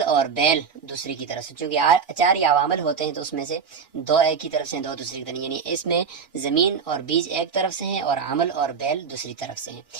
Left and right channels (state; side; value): quieter; left; 6.1 dB